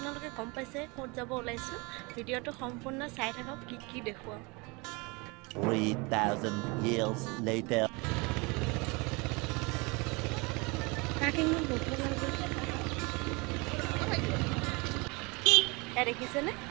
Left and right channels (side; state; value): left; quieter; 27.6 dB